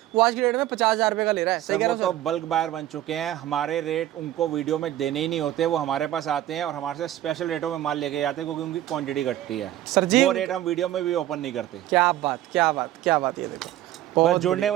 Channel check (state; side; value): quieter; left; 13.5 dB